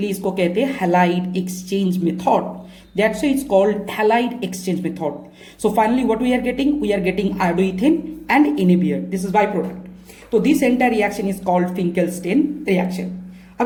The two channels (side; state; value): both; identical; correlation 1.00